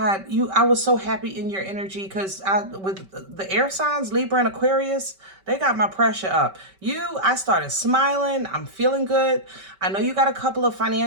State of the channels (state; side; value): late; left; 5.2 ms